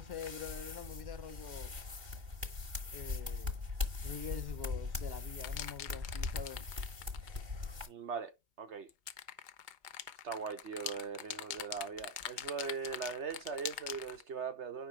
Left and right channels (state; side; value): late; left; 2.4 ms